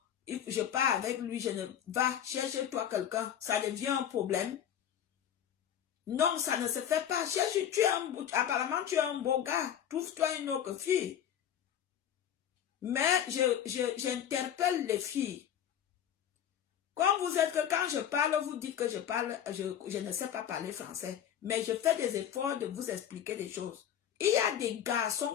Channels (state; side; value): quieter; right; 9.7 dB